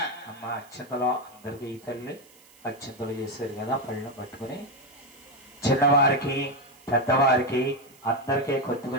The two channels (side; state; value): right; noise; hiss, 27 dB below the sound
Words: అమ్మా అత్యంతలో అందరికి ఈ తల్లి అత్యంతలు చేశారు కదా, పళ్ళను పట్టుకుని చిన్నవారికి పెద్దవారికి అందరికీ